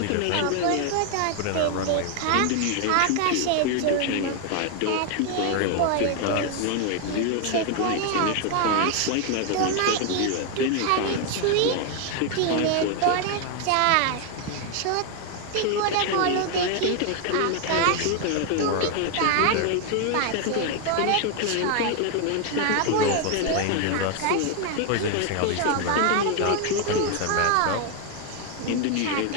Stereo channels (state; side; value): different; both; correlation 0.01